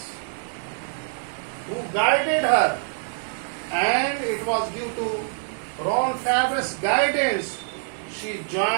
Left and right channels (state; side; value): silent; left; digital silence